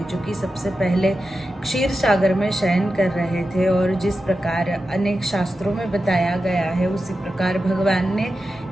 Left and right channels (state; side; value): normal; both; correlation 0.91